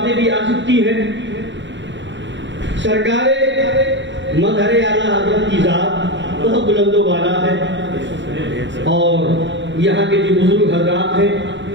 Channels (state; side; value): late; left; 0.53 ms